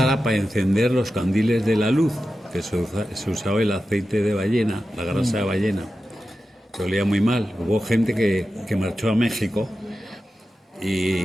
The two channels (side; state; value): both; normal; correlation 0.92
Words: para encender los candiles de la luz, que se usaba el aceite de ballena, la grasa de ballena, que olía muy mal. Hubo gente que marchó a México